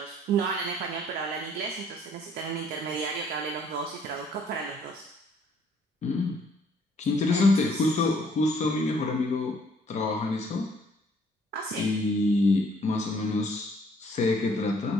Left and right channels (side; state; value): both; normal; correlation 0.62